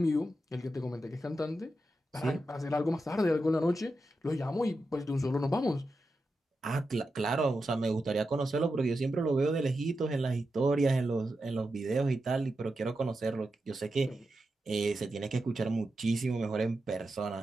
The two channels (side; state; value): both; normal; correlation 0.89